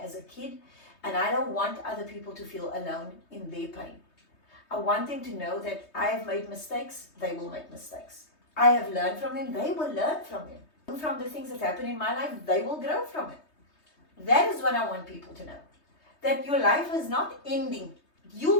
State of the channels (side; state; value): right; late; 3.2 ms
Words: a kid, and I don't want other people to feel alone in their pain. I want them to know that I have made mistakes, they will make mistakes. I have learned from them, they will learn from them. From the things that happen in my life, they will grow from it. That is what I want people to know. That your life is not ending.